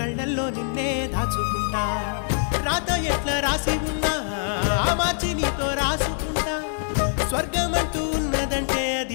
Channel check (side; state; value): right; silent; 62 dB below the other